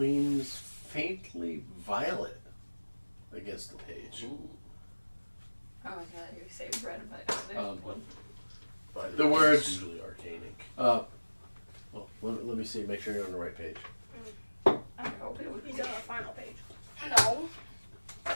faintly violet against the page. Oh my god, you say red, but The words- It's usually arcane ink. Well, let me see, make sure you're on the right page. I hope it would be. He's on the final page. No.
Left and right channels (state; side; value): inverted; both; correlation -1.00